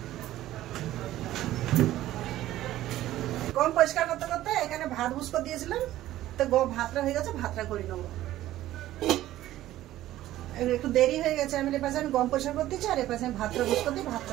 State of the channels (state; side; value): quieter; left; 14.4 dB